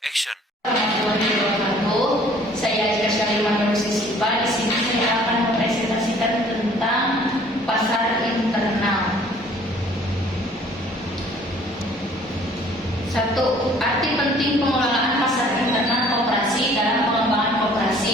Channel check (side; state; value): both; normal; correlation 0.55